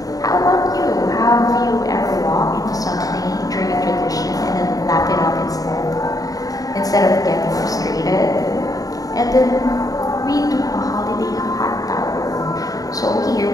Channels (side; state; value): right; late; 0.18 ms